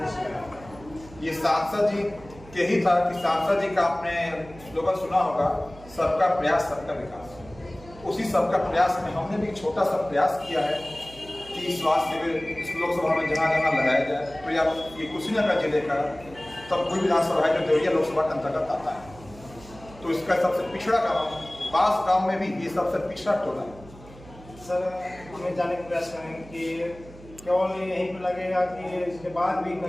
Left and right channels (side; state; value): right; noise; hum, 20 dB below the sound